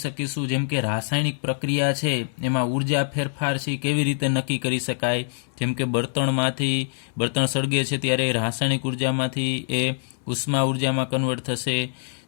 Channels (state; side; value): silent; right; 62 dB below the other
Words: શકીશું. જેમ કે રાસાયણિક પ્રક્રિયા છે એમાં ઉર્જા ફેરફાર છે કેવી રીતે નક્કી કરી શકાય. જેમ કે બળતણ સળગે છે ત્યારે રાસાયણિક ઉર્જામાંથી એ ઉષ્મા ઉર્જામાં કન્વર્ટ થશે,